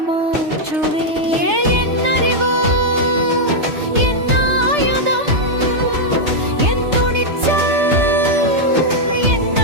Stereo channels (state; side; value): late; left; 3.3 ms